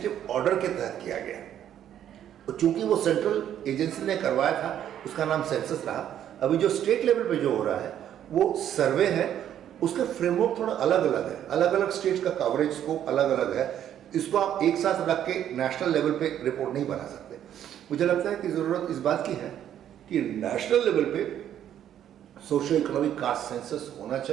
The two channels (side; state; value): left; quieter; 10.4 dB